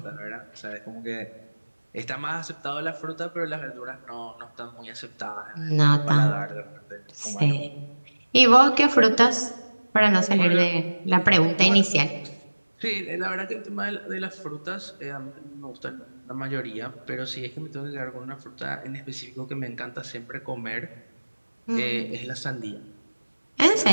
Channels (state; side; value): inverted; both; correlation -1.00